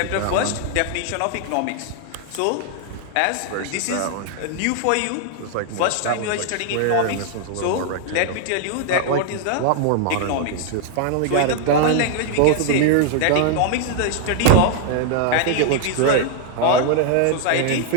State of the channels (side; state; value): both; different; correlation 0.00